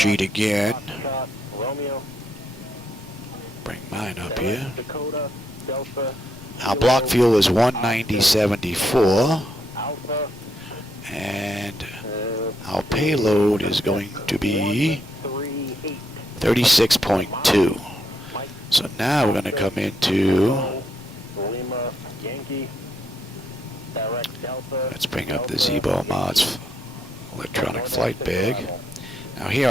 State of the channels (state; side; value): normal; both; correlation 0.77